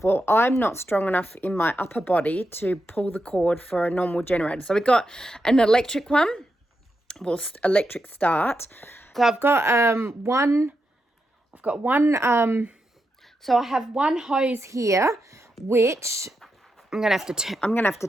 Well, I'm not strong enough in my upper body to pull the cord for a normal generator. So we've got an electric one, well, electric start. So I've got so I have one hose here, which I'm gonna have to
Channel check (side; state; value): both; normal; correlation 0.86